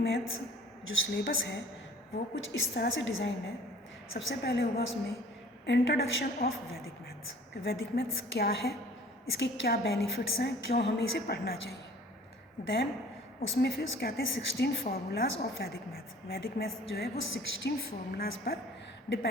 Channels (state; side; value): normal; both; correlation 0.50